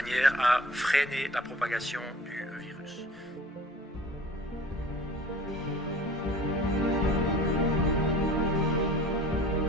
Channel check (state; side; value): normal; both; correlation 0.45